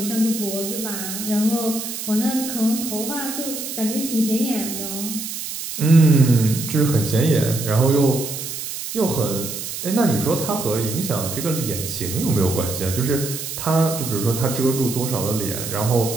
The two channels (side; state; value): right; noise; hiss, 7 dB below the sound